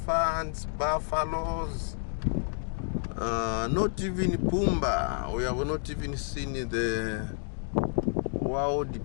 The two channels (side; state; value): right; silent; digital silence